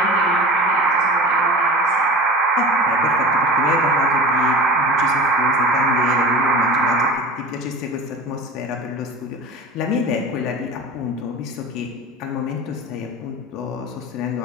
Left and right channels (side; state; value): both; normal; correlation 0.34